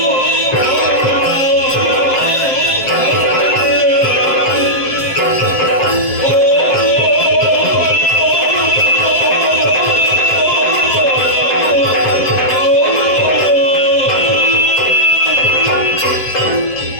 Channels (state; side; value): late; right; 7.5 ms